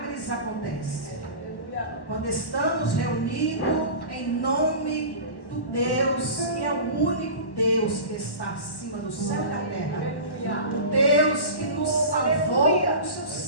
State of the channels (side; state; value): right; late; 1.1 ms